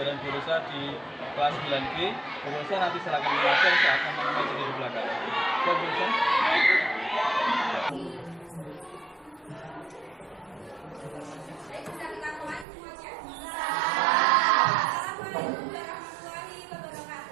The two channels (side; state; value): left; drops out; at 12.7 s